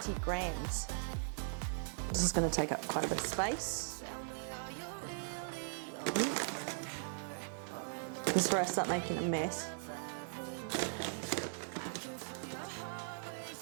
grams. This is going to take up quite a bit of space. This is where I start making a mess.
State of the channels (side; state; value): left; silent; digital silence